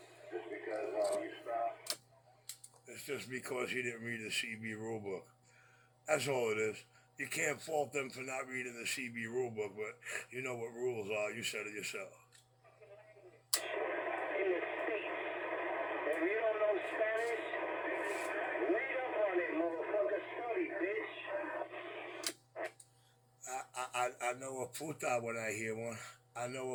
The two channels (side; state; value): both; identical; correlation 1.00